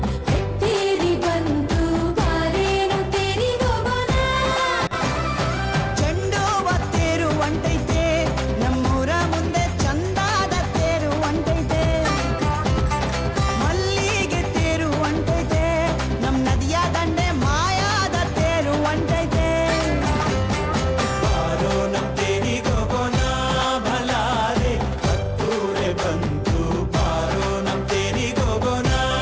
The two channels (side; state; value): both; identical; correlation 1.00